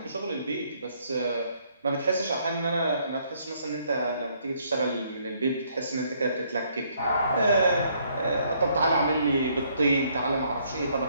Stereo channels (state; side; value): inverted; both; correlation -0.68